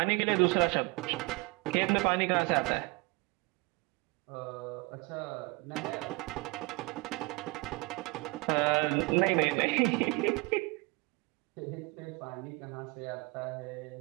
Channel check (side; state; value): left; quieter; 26.4 dB